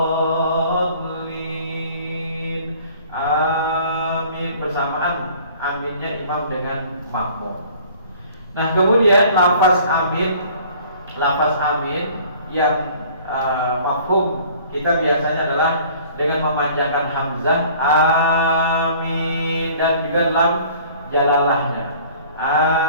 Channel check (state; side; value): inverted; both; correlation -0.51